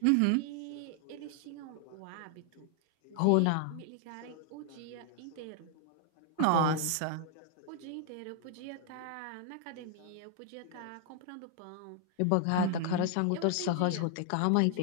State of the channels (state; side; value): different; both; correlation 0.00